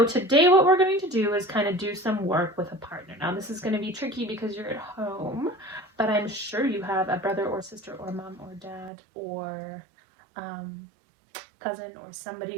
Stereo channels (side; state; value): left; drops out; at 8.9 s